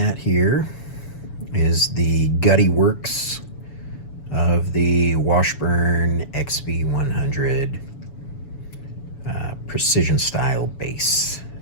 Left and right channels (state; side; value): late; right; 7.0 ms